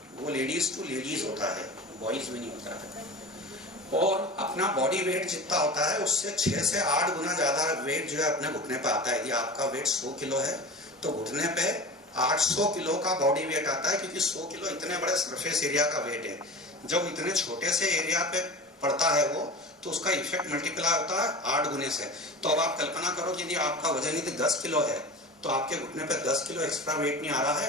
वो लेडीज टू लेडीज होता है, बॉयज में नहीं होता है। और अपना बॉडी वेट जितना होता है उससे 6 से 8 गुना ज्यादा वेट जो है अपने घुटने पे आता है। यदि आपका वेट 100 किलो है तो घुटने पे 800 किलो का बॉडी वेट आता है, क्योंकि 100 किलो इतने बड़े सरफेस एरिया का वेट है। जब इतने छोटे से एरिया पे पड़ता है वो, तो उसका इफेक्ट मल्टीप्लाई होता है 8 गुने से। तो अब आप कल्पना करो कि यदि आपका वजन यदि 10 किलो है तो आपके घुटने पे 10 किलो एक्स्ट्रा वेट नहीं आ रहा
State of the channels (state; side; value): normal; both; correlation 0.33